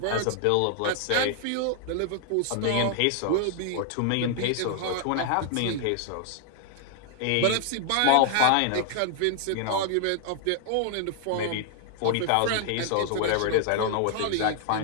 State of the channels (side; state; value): both; different; correlation 0.00